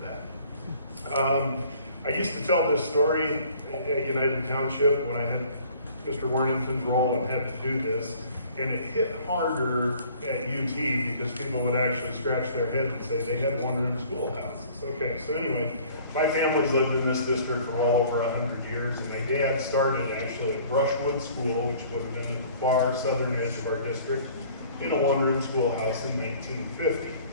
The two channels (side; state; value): both; inverted; correlation -0.52